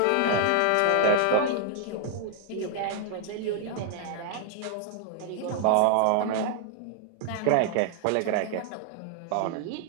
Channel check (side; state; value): both; different; correlation 0.00